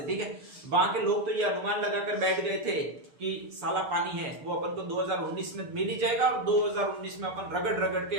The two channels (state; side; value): late; left; 6.8 ms